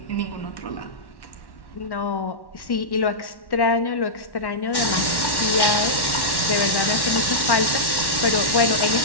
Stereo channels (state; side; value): late; right; 1.1 ms